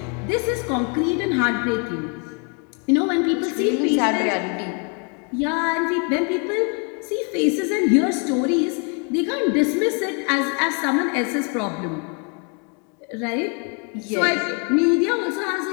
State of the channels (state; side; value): quieter; right; 37.1 dB